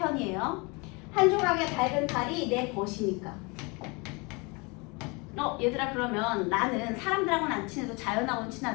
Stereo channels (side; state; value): right; quieter; 28.6 dB